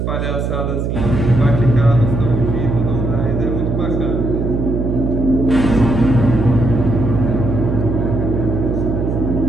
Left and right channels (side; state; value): right; noise; hum, 1 dB below the sound